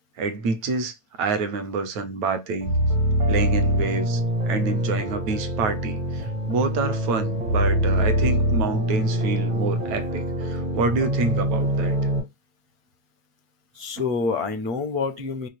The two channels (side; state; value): left; late; 8.8 ms